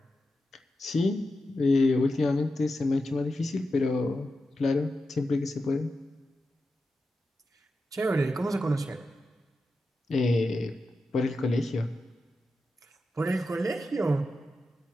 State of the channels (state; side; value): normal; both; correlation 0.90